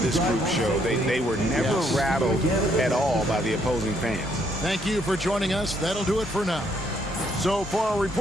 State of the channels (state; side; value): normal; both; correlation 0.71